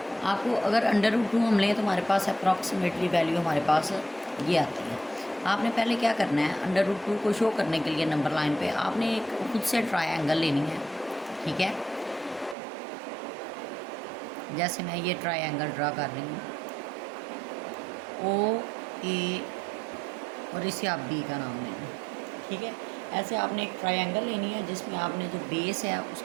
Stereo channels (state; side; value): drops out; left; at 12.6 s